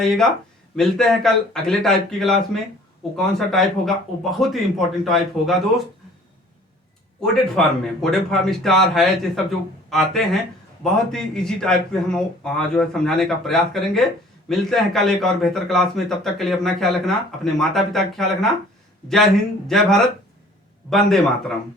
मिलते हैं कल अगले टाइप की क्लास में। वो कौन सा टाइप होगा, वो बहुत ही इंपॉर्टेंट टाइप होगा दोस्त, कोडेड फॉर्म में। कोडेड फॉर्म, स्टार है, ये सब जो आते हैं, बहुत ही इजी टाइप पे हम जो है समझाने का प्रयास करेंगे। मिलते हैं कल एक और बेहतर क्लास में। तब तक के लिए अपना ख्याल रखना, अपने माता पिता का ख्याल रखना। जय हिंद, जय भारत, वंदे मातरम।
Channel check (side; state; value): both; normal; correlation 0.52